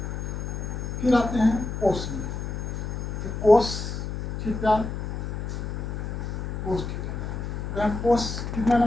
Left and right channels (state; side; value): noise; left; hum, 4 dB below the sound